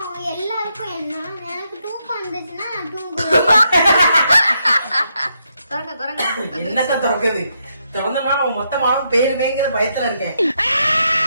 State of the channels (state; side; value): inverted; both; correlation -0.79